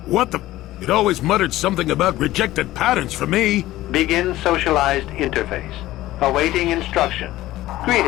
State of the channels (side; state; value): right; quieter; 16.0 dB